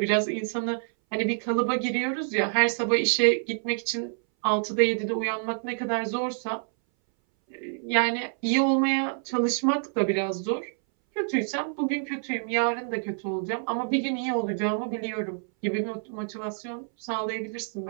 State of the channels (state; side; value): silent; left; 60 dB below the other